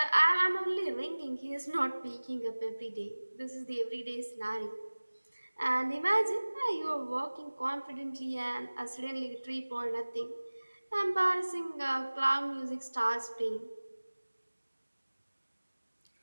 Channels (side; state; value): both; inverted; correlation -1.00